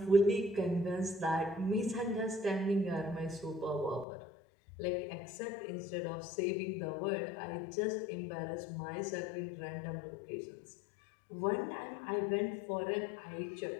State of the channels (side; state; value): right; drops out; at 4.0 s